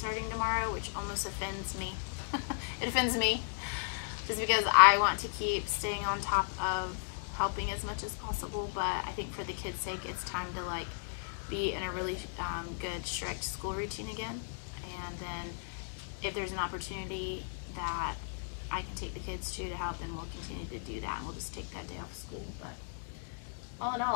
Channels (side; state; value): right; silent; digital silence